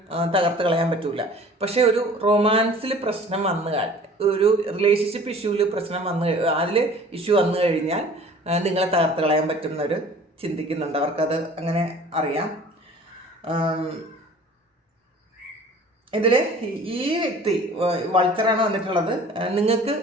തകർത്ത് കളയാൻ പറ്റില്ല. പക്ഷേ ഒരു റൊമാൻസിൽ പ്രശ്നം ഒരു റിലേഷൻഷിപ്പ് ഇഷ്യൂവിൽ അതിൽ ഇഷ്യൂ വന്നു കഴിഞ്ഞാൽ നിങ്ങളെ തകർത്ത് കളയാൻ പറ്റുന്നവർ ചിന്തിക്കുന്നുണ്ട്. അവർക്കത് അങ്ങനെ അറിയാം. ഇതിൽ ഈ വ്യക്തി വൾച്ചറാണ് വന്നിട്ടുള്ളത്. നിങ്ങൾക്ക്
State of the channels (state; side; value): normal; both; correlation 0.47